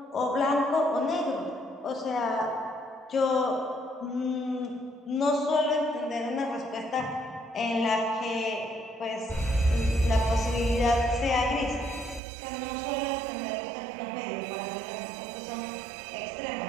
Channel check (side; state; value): left; drops out; at 12.2 s